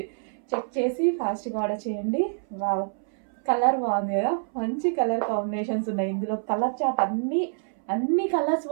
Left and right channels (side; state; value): left; silent; 60 dB below the other